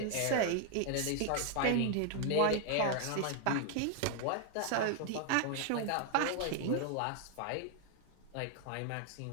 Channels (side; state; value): both; different; correlation 0.00